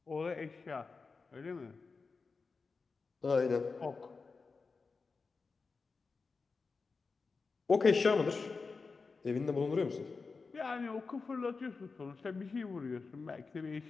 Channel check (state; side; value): quieter; right; 4.5 dB